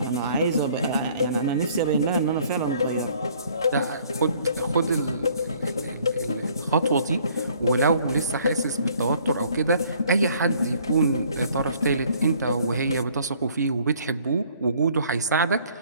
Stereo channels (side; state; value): both; inverted; correlation -0.59